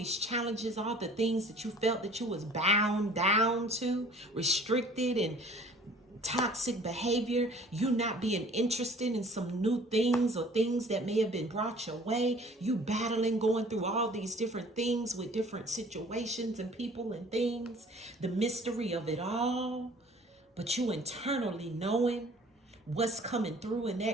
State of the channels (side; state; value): both; normal; correlation 0.51